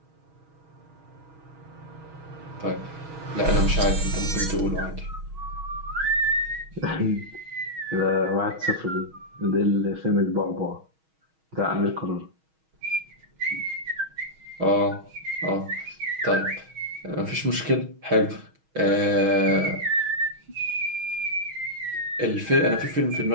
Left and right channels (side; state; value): left; late; 6.3 ms